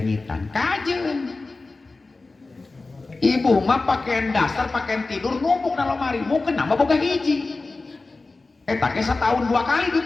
kajen. Ibu mah pakaian dasar, pakaian tidur numpuk dalam lemari, mau kenapa boga hiji? Tak setahun 2 kali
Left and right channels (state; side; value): quieter; right; 3.5 dB